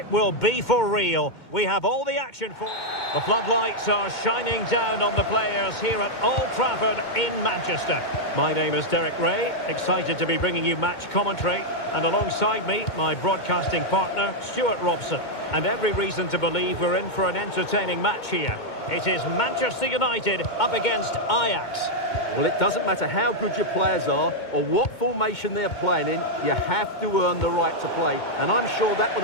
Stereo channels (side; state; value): right; late; 2.2 ms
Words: will be for real. We have all the action for... The floodlights are shining down on the players here at Old Trafford in Manchester. My name is Derek Ray, excited to be bringing you match commentary, and alongside me, my broadcasting partner, Stuart Robson. And every reason to believe we're in for an entertaining match here. It is Manchester United up against Ajax. Well, it doesn't matter how good your players are or what formation they're playing in, you have to earn the right to play. And I'm sure that would